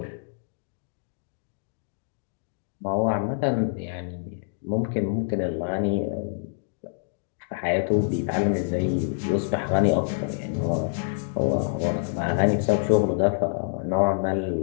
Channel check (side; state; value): right; silent; digital silence